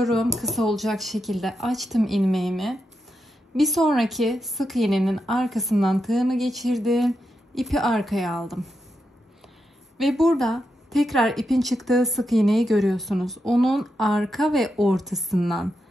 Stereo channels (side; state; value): both; normal; correlation 0.86